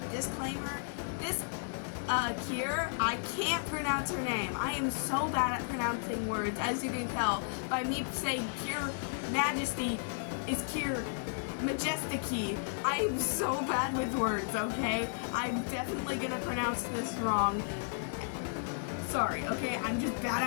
disclaimer. This Cure, I can't pronounce her name. I am so bad at pronouncing words, as you can tell by me saying Cure Majesty is Cure Majesty. I am so bad with words, okay? I'm definitely gonna pronounce this wrong. Sorry, okay? I'm just bad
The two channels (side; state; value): right; silent; digital silence